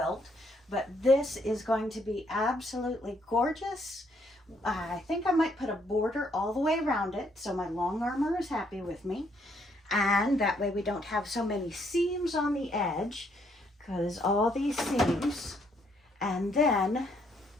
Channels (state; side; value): normal; both; correlation 0.70